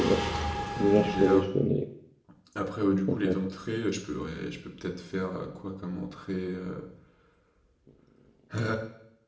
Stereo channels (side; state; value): both; identical; correlation 1.00